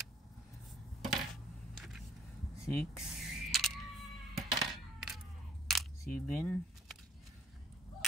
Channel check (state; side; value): normal; both; correlation 0.57